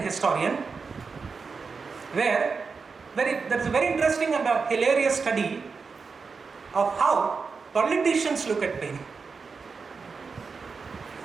where there is a very interesting and a hilarious study of how politicians look at Paine.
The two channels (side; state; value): left; quieter; 5.0 dB